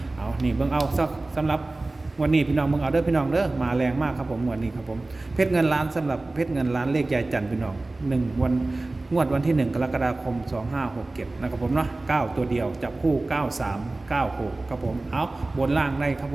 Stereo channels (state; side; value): quieter; left; 3.0 dB